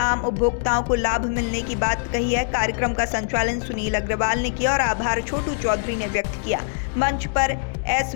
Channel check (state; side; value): silent; right; digital silence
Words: उपभोक्ताओं को लाभ मिलने की बात कही है। कार्यक्रम का संचालन सुनील अग्रवाल ने किया और आभार छोटू चौधरी ने व्यक्त किया। मंच पर एस